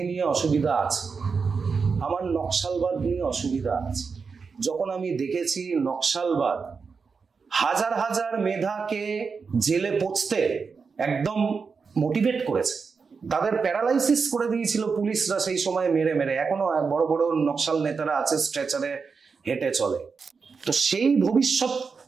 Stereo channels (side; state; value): left; quieter; 5.2 dB